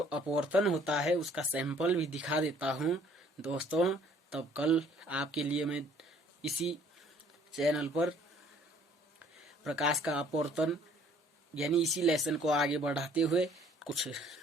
अपवर्तन होता है उसका सैंपल भी दिखा देता हूं दोस्तों। तब कल आपके लिए मैं इसी चैनल पर प्रकाश का अपवर्तन, यानी इसी लेसन को आगे बढ़ाते हुए कुछ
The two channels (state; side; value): normal; both; correlation 0.59